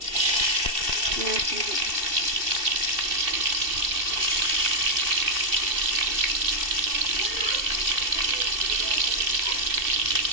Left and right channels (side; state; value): left; late; 2.7 ms